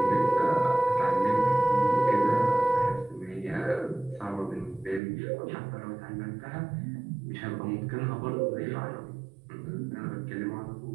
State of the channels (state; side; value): drops out; left; at 5.0 s